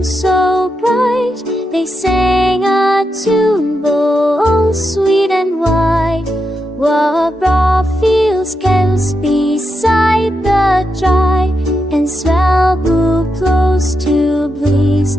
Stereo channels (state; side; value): normal; both; correlation 0.85